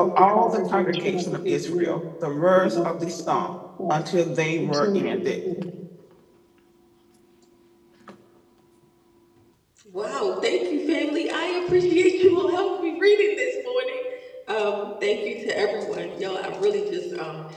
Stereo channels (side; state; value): both; identical; correlation 1.00